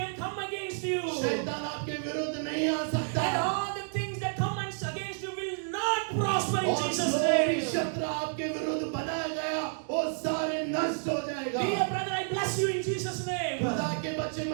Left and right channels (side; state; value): left; silent; digital silence